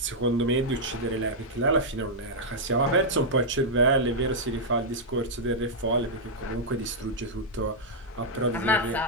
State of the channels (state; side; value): normal; both; correlation -0.07